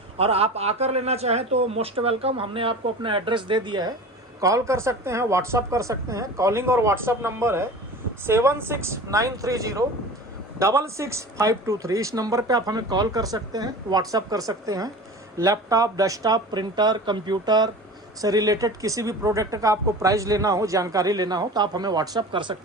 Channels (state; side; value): normal; both; correlation 0.36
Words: और आप आकर लेना चाहें तो मोस्ट वेलकम, हमने आपको अपना एड्रेस दे दिया है। कॉल कर सकते हैं, व्हाट्सअप कर सकते हैं। कॉलिंग और व्हाट्सअप नंबर है 7693066523। इस नंबर पे आप हमें कॉल कर सकते हैं, व्हाट्सअप कर सकते हैं। लैपटॉप, डेस्कटॉप, प्रिंटर, कंप्यूटर से रिलेटेड किसी भी प्रोडक्ट का आपको प्राइस लेना हो, जानकारी लेना हो तो आप हमें व्हाट्सअप कर